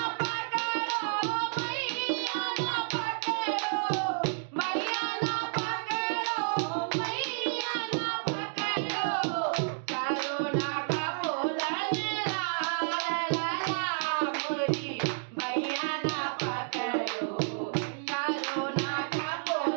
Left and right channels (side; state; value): left; silent; digital silence